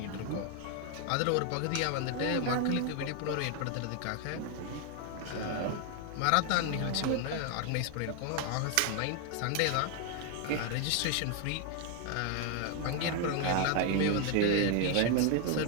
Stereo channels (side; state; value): both; different; correlation 0.00